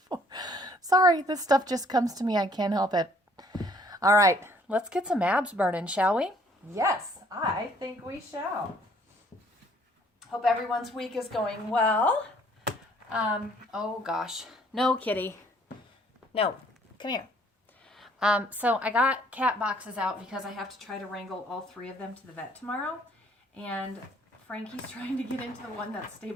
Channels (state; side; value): normal; both; correlation 0.61